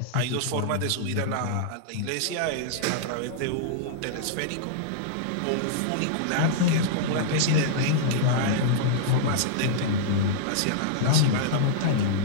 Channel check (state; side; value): different; both; correlation -0.02